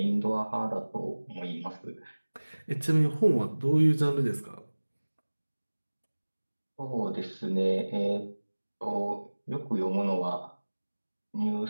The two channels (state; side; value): inverted; both; correlation -1.00